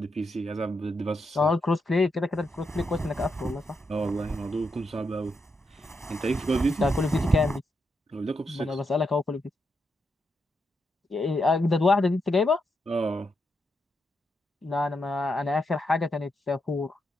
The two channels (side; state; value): both; normal; correlation 0.83